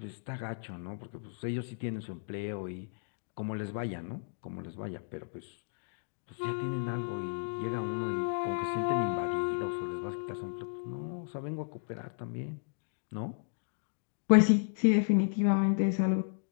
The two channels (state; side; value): silent; right; digital silence